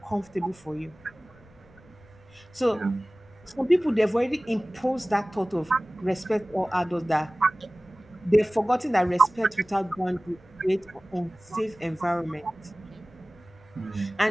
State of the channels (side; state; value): left; noise; rumble, 27 dB below the sound